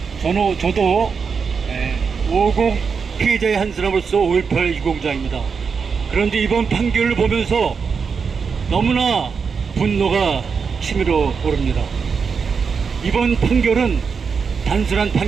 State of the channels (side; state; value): left; quieter; 5.7 dB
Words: 저도 50 피해자의 한 사람으로서 5.18 유공자입니다. 그런데 이번 판결을 보면서 너무나 분노가 치밀어 오릅니다. 이번 판결은 단순한